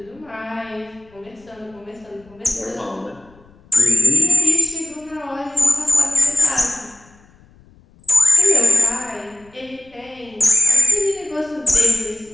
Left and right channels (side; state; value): left; noise; rumble, 29 dB below the sound